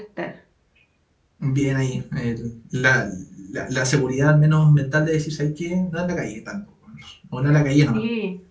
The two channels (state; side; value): identical; both; correlation 1.00